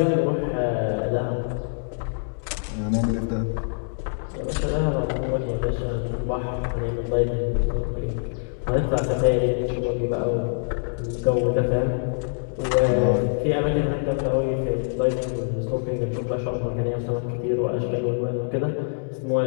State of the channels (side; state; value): right; silent; digital silence